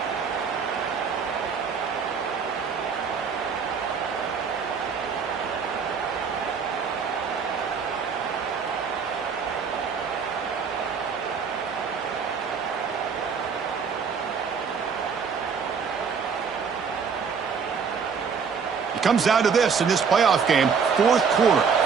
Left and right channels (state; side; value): quieter; left; 6.0 dB